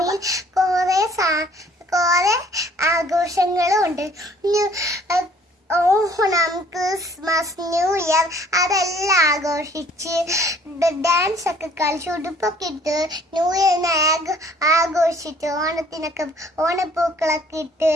കുറെ ആഘോഷങ്ങളും ഉണ്ട്. ഓണം, ക്രിസ്മസ്, ന്യൂ ഇയർ അതെല്ലാം ആഘോഷിച്ച് ഡാൻസ് ഒക്കെ കളിച്ച് ഉടുപ്പൊക്കെ ഇട്ട് ന്യൂ ഇയറിനെ ആഘോഷിച്ച് ഓണപ്പൂക്കളൊക്കെ ഇട്ട്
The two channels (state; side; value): normal; both; correlation 0.58